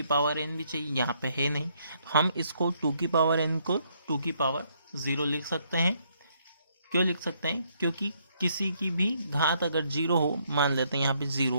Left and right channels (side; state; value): both; inverted; correlation -0.71